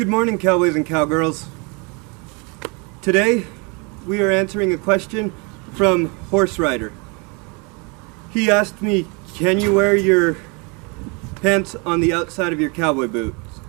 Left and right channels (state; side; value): quieter; left; 31.3 dB